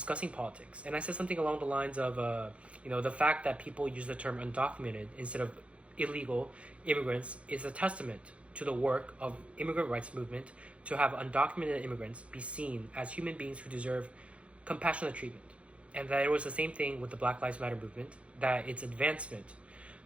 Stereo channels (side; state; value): left; late; 0.062 ms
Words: politics. And I said something along the lines of, the fact that people use the term undocumented instead of illegal immigrants is a testament to the work of immigrant rights movement to have undocumented immigrants be seen as human beings who deserve compassionate treatment. And that it was the same thing with the Black Lives Matter movement, that its advancement